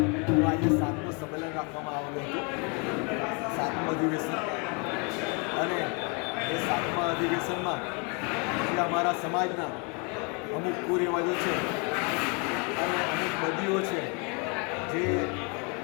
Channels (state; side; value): quieter; right; 33.5 dB